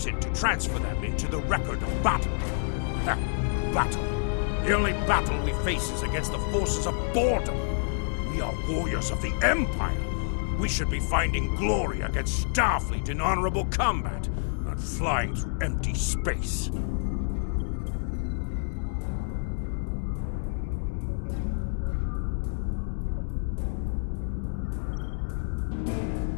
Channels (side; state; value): right; silent; 59 dB below the other